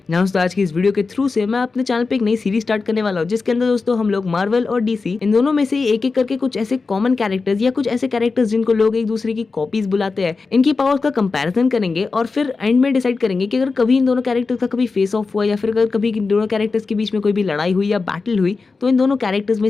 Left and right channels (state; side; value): quieter; right; 4.2 dB